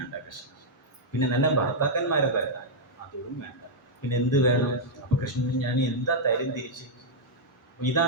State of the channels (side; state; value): both; normal; correlation -0.05